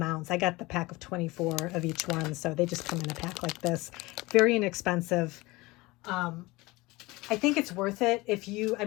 I got the pack of 24 of each one, so they just come in a pack like this. Very inexpensive. I think it's worth it if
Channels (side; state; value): right; quieter; 21.8 dB